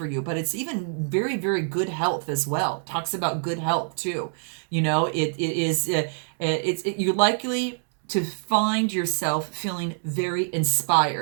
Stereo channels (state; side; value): silent; left; digital silence